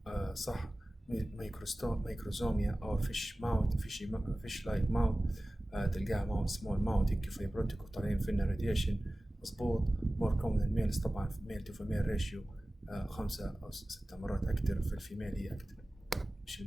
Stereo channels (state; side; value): normal; both; correlation 0.97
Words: صح. microsomia أو fish like mouth تلقاها small mouth هيك fibrotic وطالعين فينا radiation مظبوط. more common in males طبعا male to female ratio 5 أو 6 مرات أكثر. في الفيميل هي أكثر مش